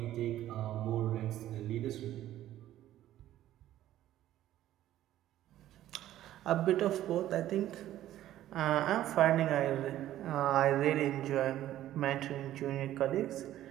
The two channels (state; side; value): quieter; left; 13.2 dB